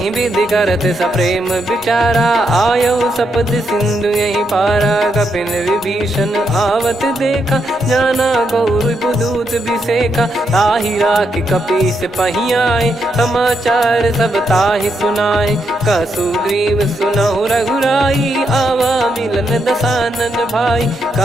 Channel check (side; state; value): both; normal; correlation 0.80